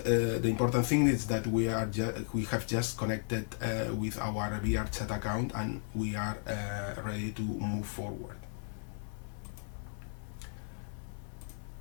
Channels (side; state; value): right; silent; 55 dB below the other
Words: the important thing is that we have just connected with our VRChat account, and we are ready to move forward.